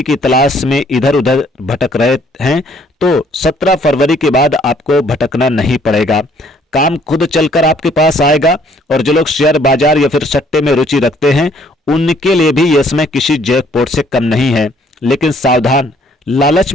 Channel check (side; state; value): both; normal; correlation 0.63